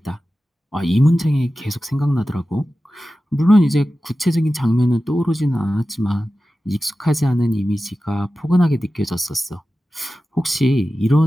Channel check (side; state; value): both; normal; correlation 0.94